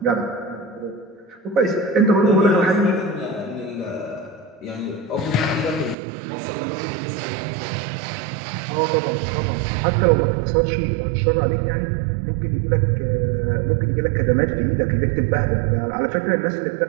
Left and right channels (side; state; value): left; drops out; at 6.0 s